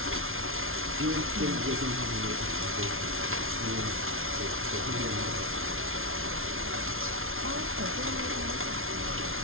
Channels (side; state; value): left; late; 0.61 ms